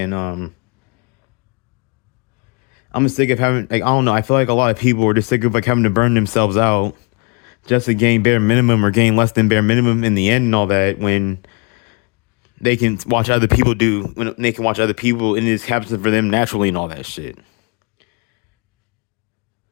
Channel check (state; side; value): quieter; right; 32.7 dB